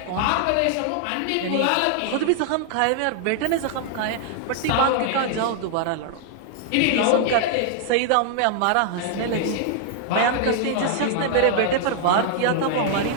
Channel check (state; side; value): different; both; correlation 0.00